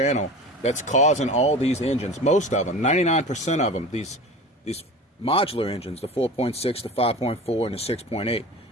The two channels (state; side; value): normal; both; correlation 0.35